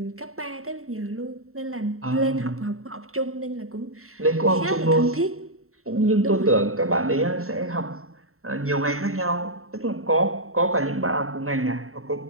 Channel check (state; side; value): late; left; 0.63 ms